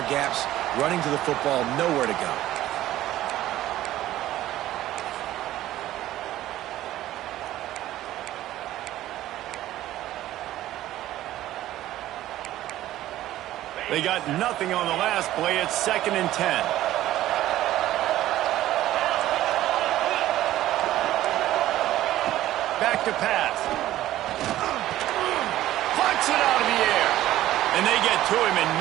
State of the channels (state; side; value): quieter; left; 14.2 dB